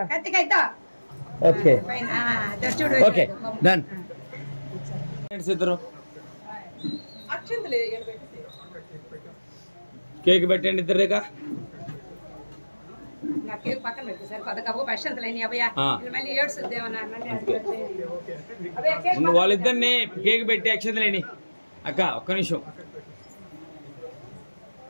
Okay okay done. ఇద్దరు కేక్ పెట్టండి ఇద్దరుగా. వాళ్ళిద్దరిని కేక్ పెట్టి అక్షతలేని. అక్క ఒక్క నిమిషం.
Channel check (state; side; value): inverted; both; correlation -1.00